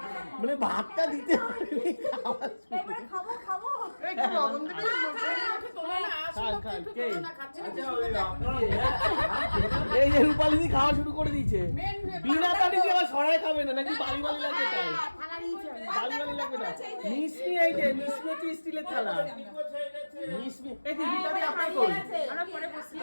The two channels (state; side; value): inverted; both; correlation -1.00